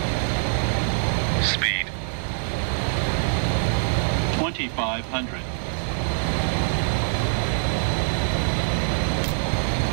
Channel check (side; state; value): left; silent; 62 dB below the other